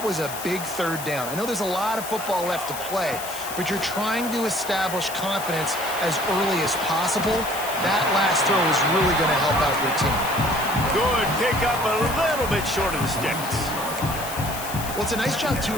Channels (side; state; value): left; noise; hiss, 10 dB below the sound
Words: was a big third down. I know there's a lot of football left to play, but you're trying to establish confidence as early as possible. That last throw is really going to help out your team. Good pickup, a little bit short of the sticks. Well, it's a nice job, too,